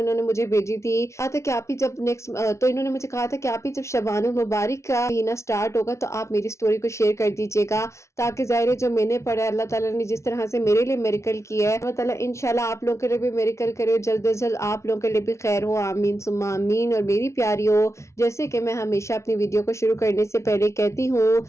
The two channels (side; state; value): right; late; 0.13 ms